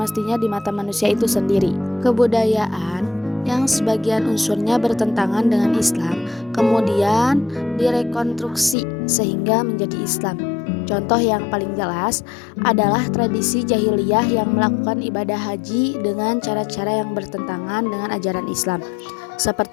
di mata manusia itu sendiri. Kebudayaan yang sebagian unsurnya bertentangan dengan Islam kemudian direkonstruksi sehingga menjadi Islam. Contoh yang paling jelas adalah tradisi jahiliyah yang melakukan ibadah haji dengan cara-cara yang bertentangan dengan ajaran Islam,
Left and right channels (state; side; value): drops out; right; at 8.8 s